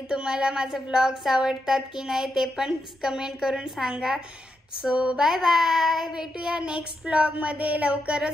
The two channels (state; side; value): normal; both; correlation 0.84